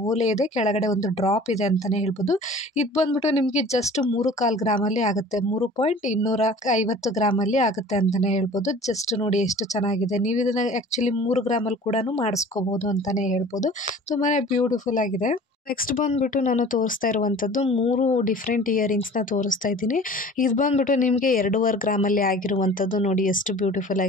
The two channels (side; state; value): both; normal; correlation 0.44